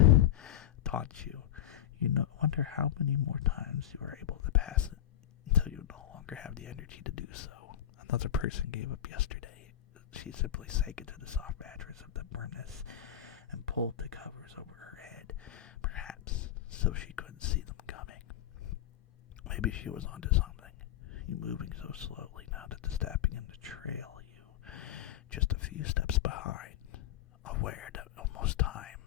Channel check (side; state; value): right; quieter; 11.5 dB